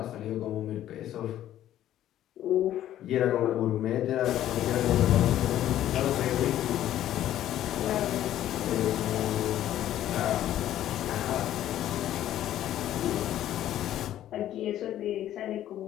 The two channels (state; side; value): quieter; right; 12.3 dB